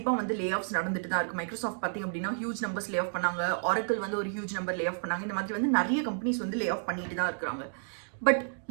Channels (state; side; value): silent; left; digital silence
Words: வந்து லே ஆஃப்ஸ் நடந்துட்டு தான் இருக்கு. மைக்ரோசாஃப்ட் பார்த்தீங்க அப்படின்னா ஹியூஜ் நம்பர்ஸ் லே ஆஃப் பண்ணாங்க. ஆரக்கிள் வந்து ஒரு ஹியூஜ் நம்பர் லே ஆஃப் பண்ணாங்க. இந்த மாதிரி வந்து நிறைய கம்பெனிஸ் வந்து லே ஆஃப் பண்ணிட்டு தான் இருக்கிறாங்க. பட்